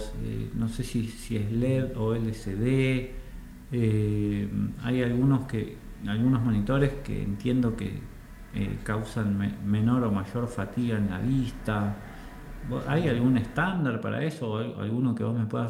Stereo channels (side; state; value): both; identical; correlation 1.00